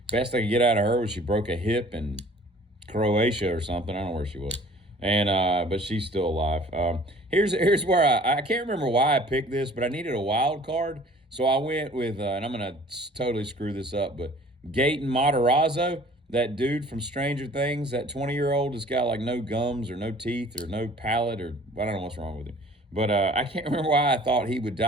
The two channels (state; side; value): normal; both; correlation 0.50